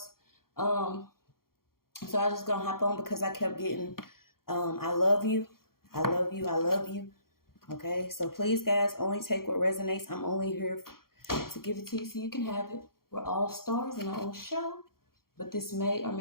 So I just gonna hop on because I kept getting I love you. I love you. I love you. Okay, so please, guys, only take what resonates. I'm only here to give it to you so you can have it. We're all stars in our own show, but this may or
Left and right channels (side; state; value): right; late; 0.92 ms